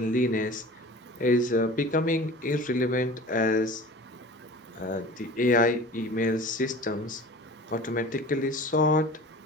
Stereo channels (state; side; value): normal; both; correlation 0.39